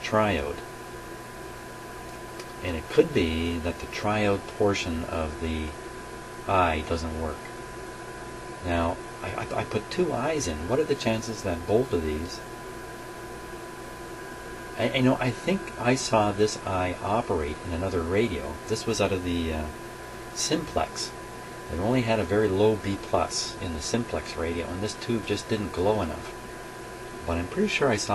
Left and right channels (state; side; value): identical; both; correlation 1.00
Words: And it could be that the triode portion of the eye doesn't work. Now, I put two eyes in. What are the chances that both of these... I think I saw this eye operate in another radio. This was out of the simplex. It only had a very low B+ in the simplex radio, and this tube just didn't glow enough. But I'm pretty sure I